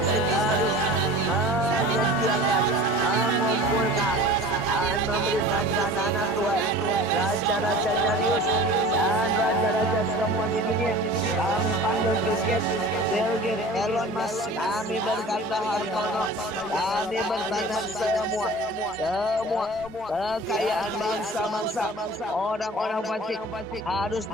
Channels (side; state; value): both; normal; correlation 0.40